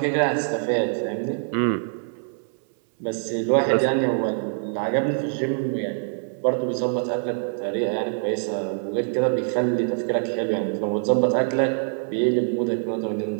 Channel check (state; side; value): silent; left; 62 dB below the other